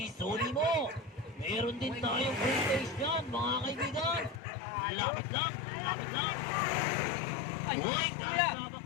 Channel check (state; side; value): drops out; right; at 4.4 s